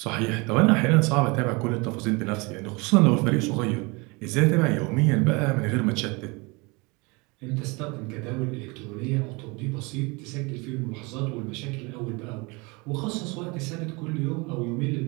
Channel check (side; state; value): left; quieter; 27.3 dB